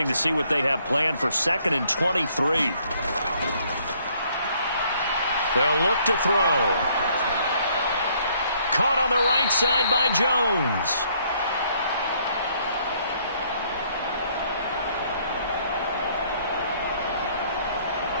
to see what they have planned for 2nd and 23. They'll look to throw. Caught on the right side by Jones.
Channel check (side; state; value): both; inverted; correlation -0.65